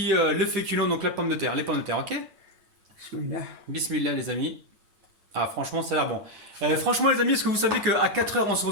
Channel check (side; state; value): left; late; 9.8 ms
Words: le féculent, donc la pomme de terre, les pommes de terre. Ok. Bismillah. Bismillah les amis. Ah franchement ça a l'air bon. Franchement les amis, est-ce que vous savez qu'à 4h on se